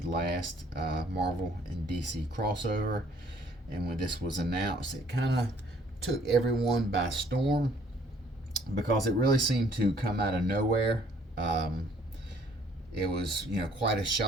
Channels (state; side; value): normal; both; correlation 0.60